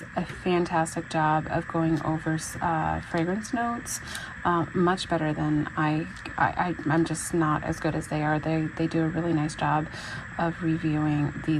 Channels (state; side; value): identical; both; correlation 1.00